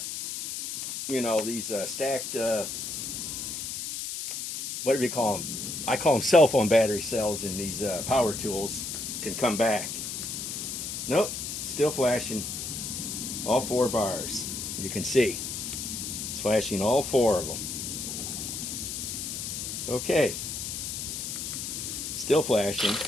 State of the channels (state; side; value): noise; left; hiss, 5 dB below the sound